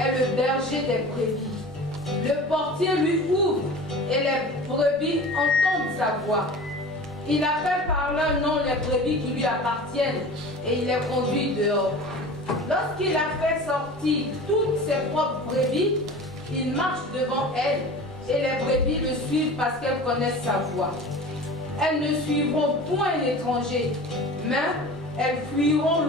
le berger des brebis. Le portier lui ouvre et les brebis entendent sa voix. Il appelle par leur nom les brebis qui lui appartiennent et il les conduit dehors. Lorsqu'il a fait sortir toutes ses propres brebis, il marche devant elles et les brebis le suivent parce qu'elles connaissent sa voix. Elles ne suivront point l'étranger, mais elles fuiront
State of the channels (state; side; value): normal; both; correlation 0.37